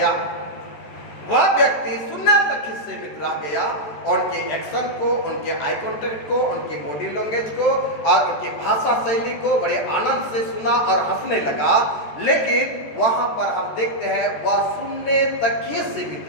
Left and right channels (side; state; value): right; late; 14 ms